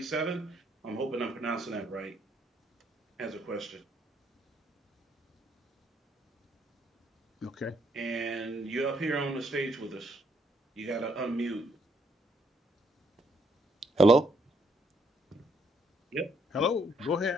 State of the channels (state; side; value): normal; both; correlation 0.71